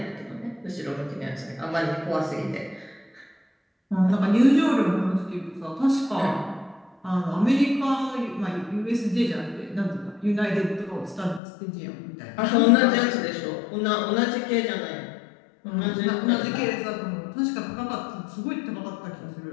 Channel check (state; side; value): drops out; right; at 11.4 s